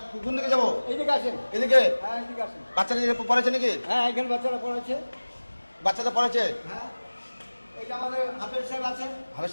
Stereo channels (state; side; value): inverted; both; correlation -1.00